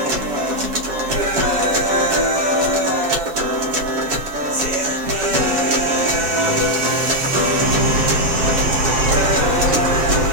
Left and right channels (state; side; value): late; left; 7.2 ms